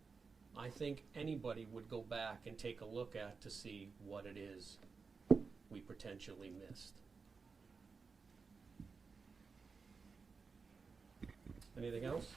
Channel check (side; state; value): left; quieter; 4.9 dB